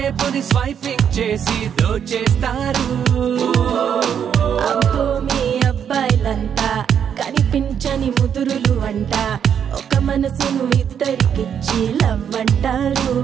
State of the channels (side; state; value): left; quieter; 8.3 dB